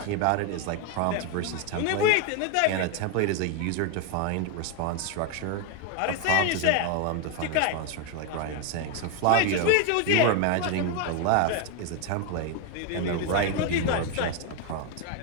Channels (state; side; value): different; both; correlation 0.01